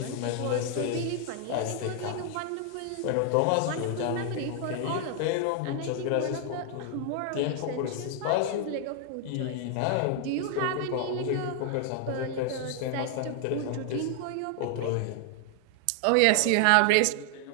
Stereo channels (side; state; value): both; different; correlation 0.00